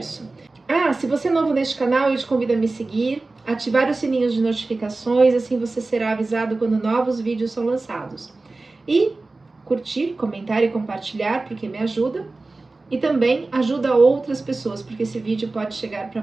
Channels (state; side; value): quieter; left; 3.4 dB